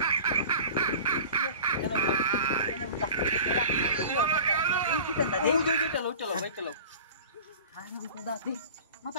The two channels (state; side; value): inverted; both; correlation -0.39